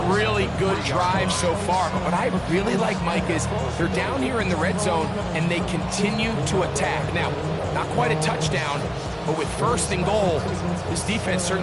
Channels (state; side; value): identical; both; correlation 1.00